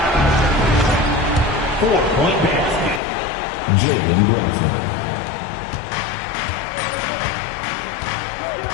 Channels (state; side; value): drops out; right; at 3.0 s